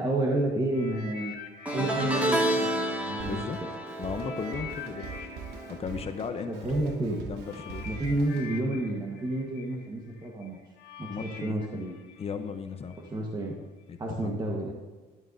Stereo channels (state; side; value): normal; both; correlation 0.63